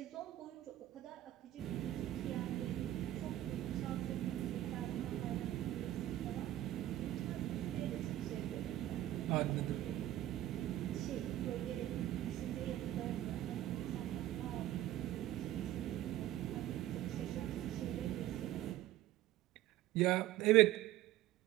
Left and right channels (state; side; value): quieter; left; 14.0 dB